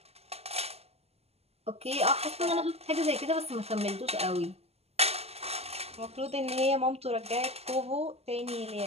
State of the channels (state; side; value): late; left; 0.30 ms